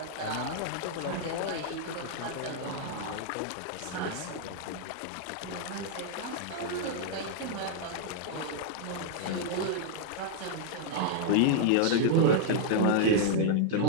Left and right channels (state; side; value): different; both; correlation -0.01